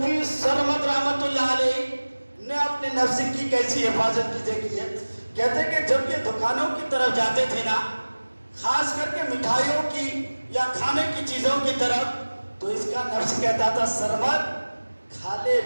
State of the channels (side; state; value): both; inverted; correlation -1.00